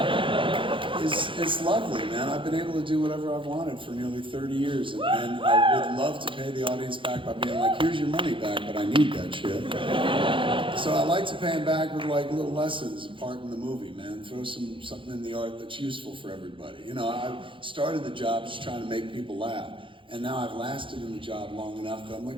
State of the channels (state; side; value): late; left; 0.25 ms